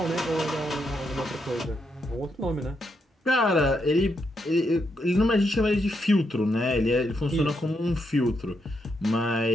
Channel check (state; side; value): normal; both; correlation 0.80